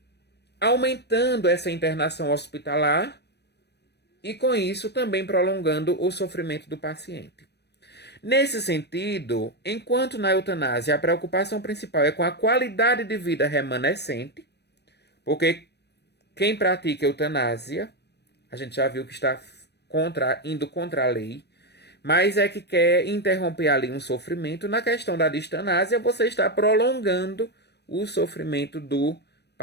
aumentando essa internação hospitalar e, com isso, também prolongando o sofrimento do paciente. Nesse sentido, enquanto na eutanásia a preocupação principal é com a qualidade de vida remanescente, porque quem pratica eutanásia, a gente já viu que está indo contra a lei, mas é que quer interromper ali um sofrimento. Na questão da distanásia, você está prolongando o sofrimento do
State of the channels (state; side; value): late; right; 0.49 ms